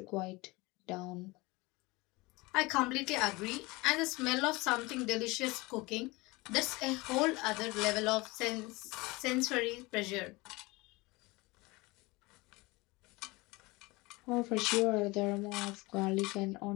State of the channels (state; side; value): quieter; right; 23.2 dB